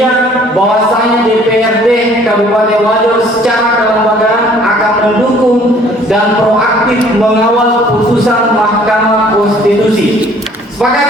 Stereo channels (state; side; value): normal; both; correlation 0.56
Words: bahwasanya DPRD Kabupaten Wajo secara kelembagaan akan mendukung dan proaktif mengawal putusan Mahkamah Konstitusi. Sepakat